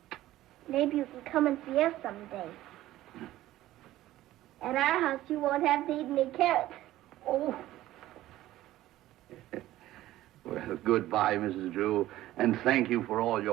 Maybe you can come and see us someday. At our house, you won't have to eat any carrots. Oh. Well, goodbye, Mrs. Drew, and thank you for all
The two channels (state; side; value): quieter; left; 15.1 dB